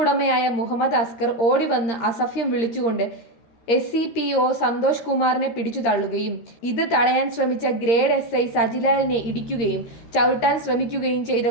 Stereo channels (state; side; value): late; right; 13 ms